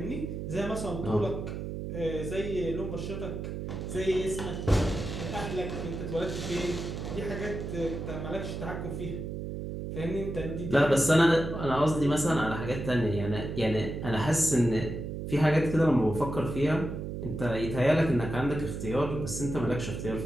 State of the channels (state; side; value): noise; right; hum, 5 dB below the sound